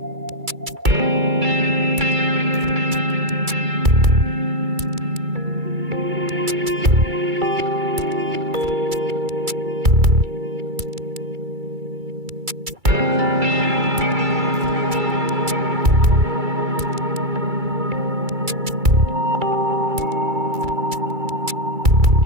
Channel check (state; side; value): late; left; 2.3 ms